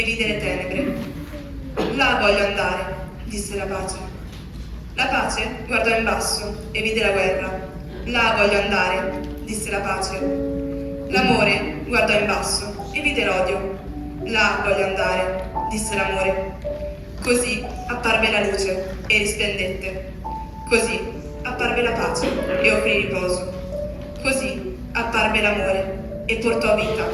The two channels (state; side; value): identical; both; correlation 1.00